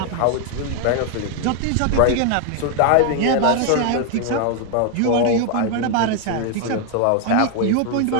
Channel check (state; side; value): different; both; correlation 0.00